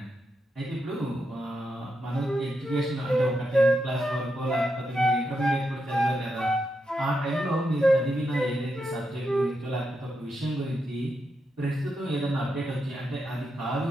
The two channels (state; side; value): normal; both; correlation 0.84